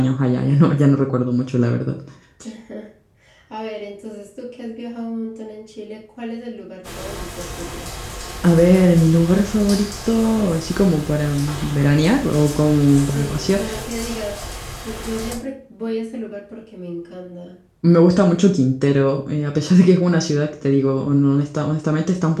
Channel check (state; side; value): identical; both; correlation 1.00